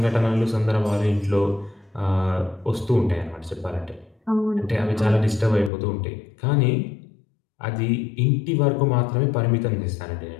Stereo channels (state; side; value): drops out; right; at 5.7 s